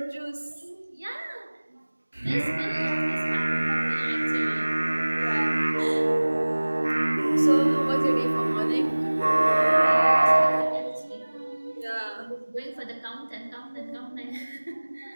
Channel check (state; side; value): inverted; both; correlation -1.00